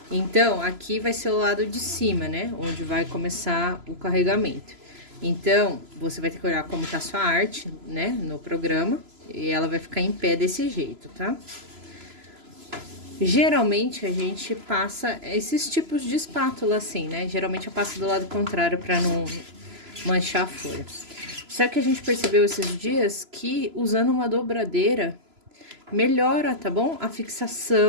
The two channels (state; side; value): late; left; 3.0 ms